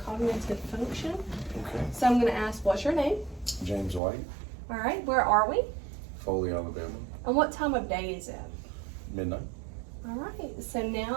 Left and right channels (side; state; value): left; drops out; at 4.0 s